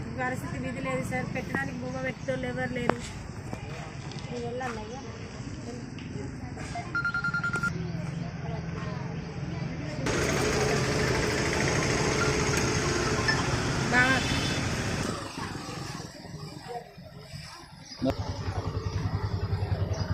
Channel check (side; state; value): both; identical; correlation 1.00